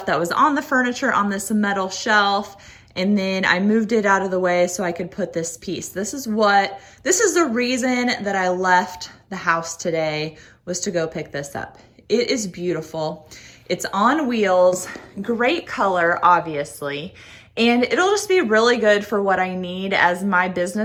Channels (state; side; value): identical; both; correlation 1.00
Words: that was on the furniture on this metal shelf, and then I moved it out of the way so I could put this piece. This is the reason that I left the house today, was to go pick this up. It is beautiful. It's on wheels, great color, obviously, and it'll just be really good for what I need as my